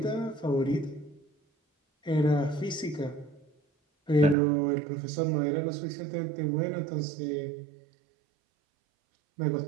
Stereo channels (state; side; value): drops out; left; at 4.4 s